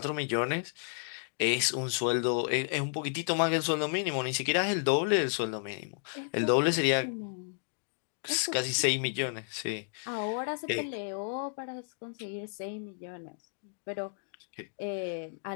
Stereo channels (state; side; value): silent; right; digital silence